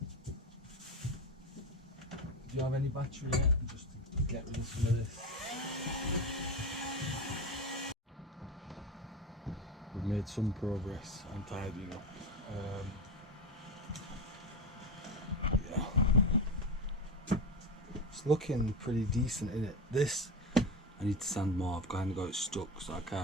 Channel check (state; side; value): normal; both; correlation 0.21